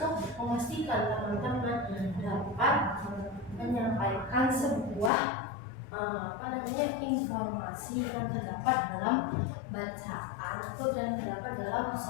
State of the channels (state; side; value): drops out; right; at 5.1 s